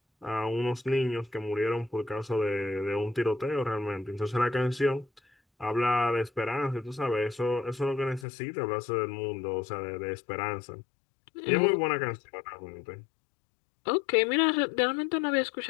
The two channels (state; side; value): drops out; right; at 8.2 s